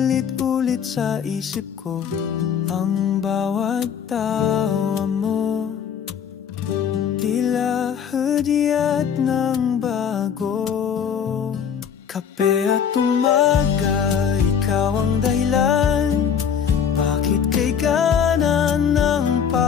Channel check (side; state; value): right; quieter; 7.7 dB